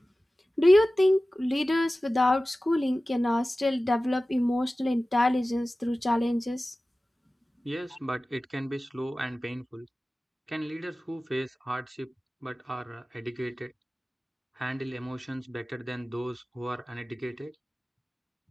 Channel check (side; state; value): both; normal; correlation 0.97